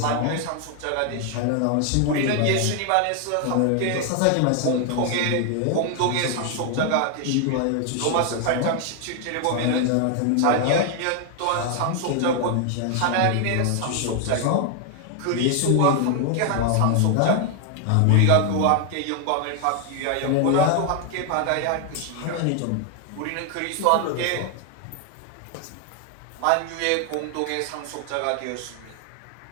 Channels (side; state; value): both; different; correlation 0.00